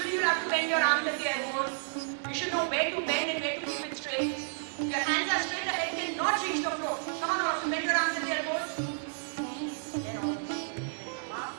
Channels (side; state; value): left; silent; digital silence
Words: you have to bend your arms at the elbows. You should know where to bend and where to keep it straight. If your hands are straight, the head cannot reach the floor. Come on, all of you, bend your arms at the elbows. Then all of you, come up.